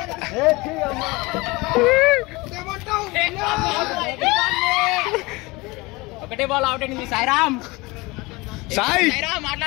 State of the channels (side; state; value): right; quieter; 23.5 dB